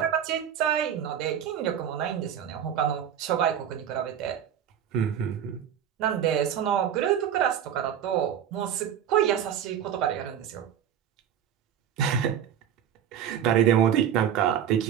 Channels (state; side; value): quieter; left; 9.3 dB